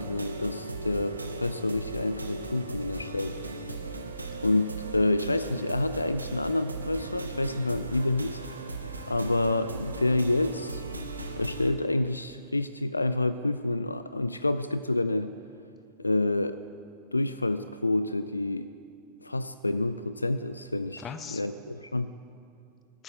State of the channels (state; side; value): inverted; both; correlation -0.89